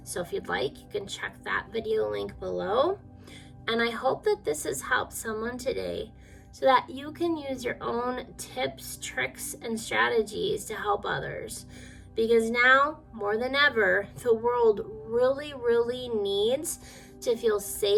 So if you'd like, you can check that video link below. And I hope that this has helped someone today so that you can use your own tips, tricks, and strategies to help others. Because now, more than ever, the world really, really needs to feel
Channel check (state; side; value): identical; both; correlation 1.00